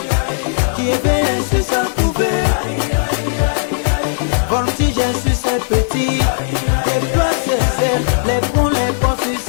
qui éveille sur sa couvée. Voltige sur ses petits, les plots ses ailes, les ponts sur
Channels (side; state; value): right; silent; 57 dB below the other